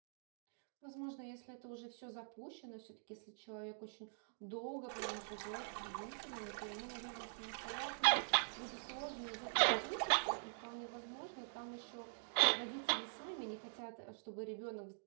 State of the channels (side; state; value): left; silent; digital silence